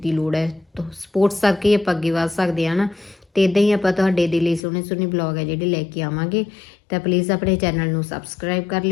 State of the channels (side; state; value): right; drops out; at 4.6 s